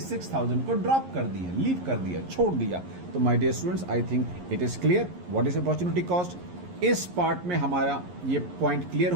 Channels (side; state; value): left; late; 11 ms